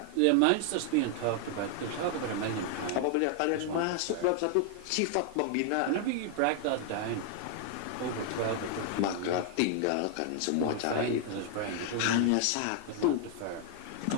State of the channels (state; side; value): different; both; correlation 0.00